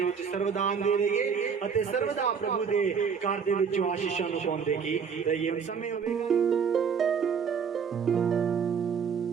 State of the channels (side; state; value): left; quieter; 6.5 dB